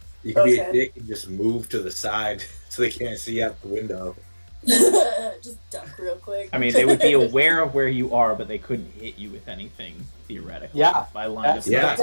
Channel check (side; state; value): both; inverted; correlation -1.00